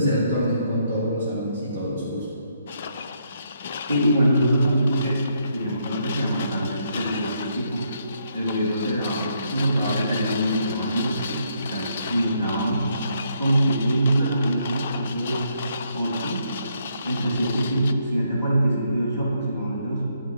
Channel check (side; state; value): both; inverted; correlation -0.74